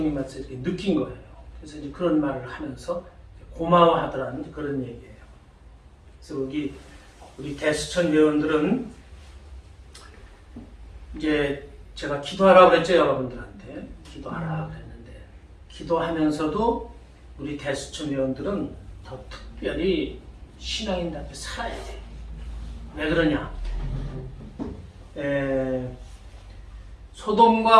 이렇게 느낀 거예요. 그래서 이제 그런 말을 하면서 고마워하더라는 그런 얘기예요. 그래서 여기 우리 대수천 회원들은 이제 제가 기도하라고 그랬죠. 여러분들한테 기도하라 그랬는데 기도하면서도 우리 대수천 회원들은 더 특별히 신앙인답게 살아야 돼요. 왜 그러냐?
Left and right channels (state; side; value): identical; both; correlation 1.00